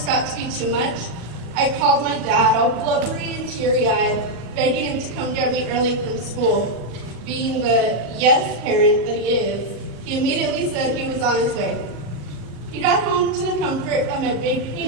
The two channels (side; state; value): left; late; 37 ms